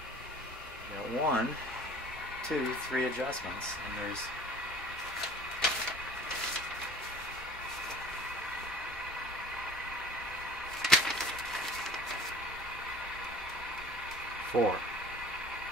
Got 1, 2, 3 adjustments, and there's four.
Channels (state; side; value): normal; both; correlation 0.46